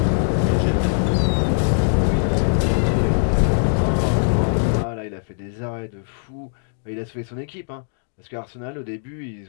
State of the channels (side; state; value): right; silent; digital silence